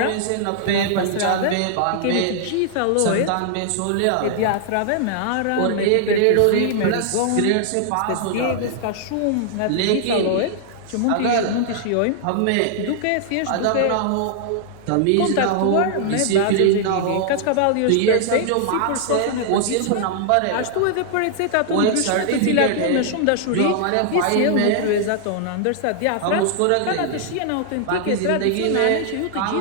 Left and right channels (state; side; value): different; both; correlation -0.01